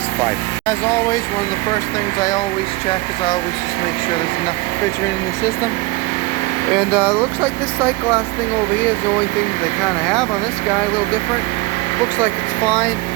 5. As always, one of the first things I always check is I always just make sure there's enough refrigerant in the system. And it looks like this sight glass thing over here is the only thing they kind of have on this guy. A little different. Looks like it's fine.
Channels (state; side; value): quieter; left; 22.3 dB